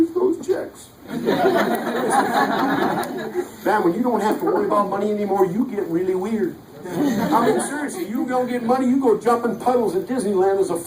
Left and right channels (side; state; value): both; identical; correlation 1.00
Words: those checks. Man, when you don't have to worry about money anymore, you get really weird. I mean, seriously, you don't get money, you go jumping puddles at Disneyland as a